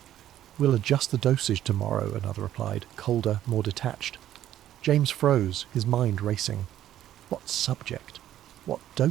We'll adjust the dosage tomorrow, another replied, colder, more detached. James froze, his mind racing. What subject? What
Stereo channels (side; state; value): left; quieter; 12.1 dB